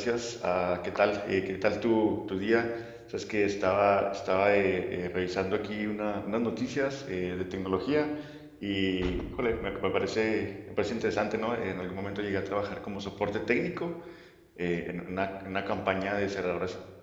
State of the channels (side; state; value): both; identical; correlation 1.00